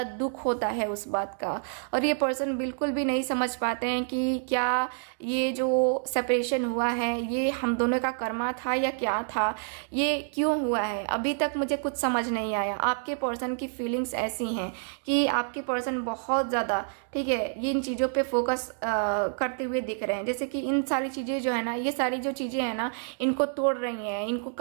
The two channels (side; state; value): left; silent; digital silence